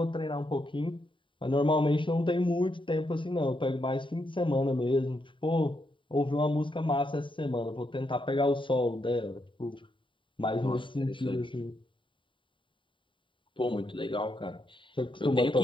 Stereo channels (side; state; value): right; late; 0.24 ms